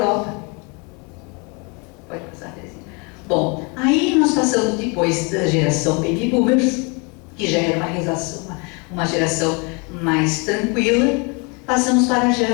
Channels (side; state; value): right; quieter; 31.7 dB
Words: Pode passar, Terezinha. Bom, aí nós passamos depois da geração Baby Boomers, que já era uma geração mais tranquila, passamos para a